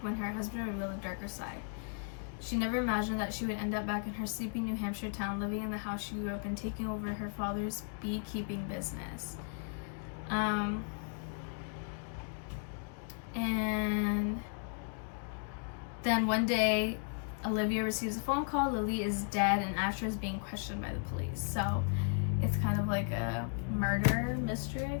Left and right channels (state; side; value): silent; right; 54 dB below the other